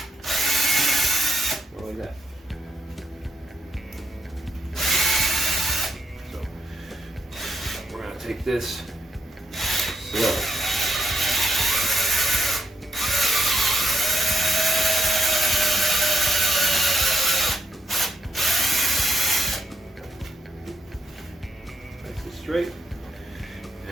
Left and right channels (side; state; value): both; normal; correlation 0.79